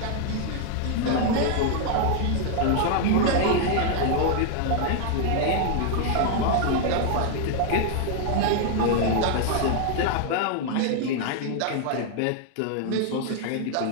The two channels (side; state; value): both; different; correlation 0.00